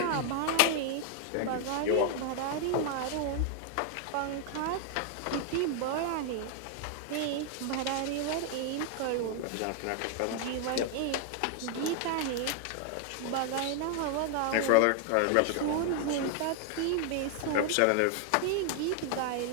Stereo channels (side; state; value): both; different; correlation 0.00